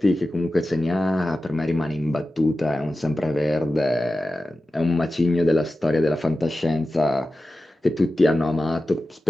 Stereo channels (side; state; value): both; normal; correlation 0.94